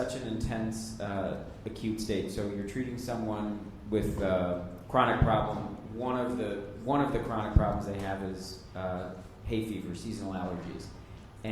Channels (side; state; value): both; identical; correlation 1.00